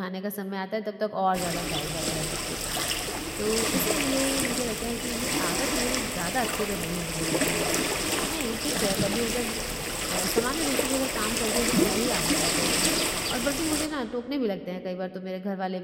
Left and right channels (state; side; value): identical; both; correlation 1.00